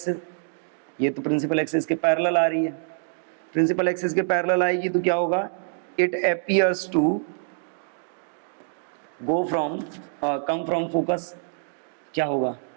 ये तो प्रिंसिपल एक्सिस के पैरेलल आ रही है। प्रिंसिपल एक्सिस के पैरेलल आएगी तो क्या होगा? It appears to go from come from focus. क्या होगा?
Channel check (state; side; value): silent; left; digital silence